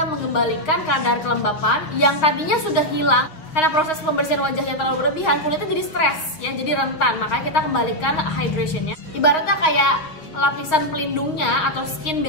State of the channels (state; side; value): late; right; 6.6 ms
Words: mengembalikan kadar kelembapan yang tadinya sudah hilang karena proses pembersihan wajah yang terlalu berlebihan, kulitnya jadi stres ya, jadi rentan. Makanya kita kembalikan hydrationnya, ibaratnya kayak lapisan pelindungnya atau skin